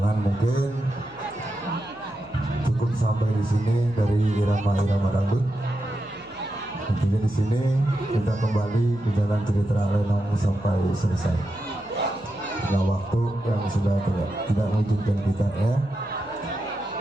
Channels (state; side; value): noise; left; hum, 26 dB below the sound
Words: mungkin cukup sampai di sini dari irama-irama dangdut. Tentunya di sini kita kembali ke jalan cerita Lenong sampai selesai. Nah, waktu yang sudah tidak mengizinkan kita ya.